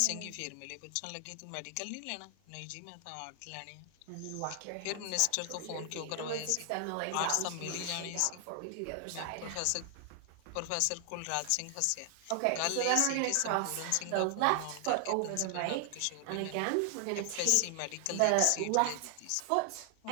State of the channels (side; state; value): both; different; correlation 0.00